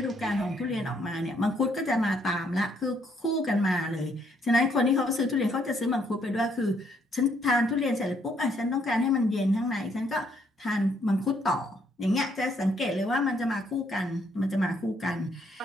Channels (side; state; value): both; normal; correlation 0.70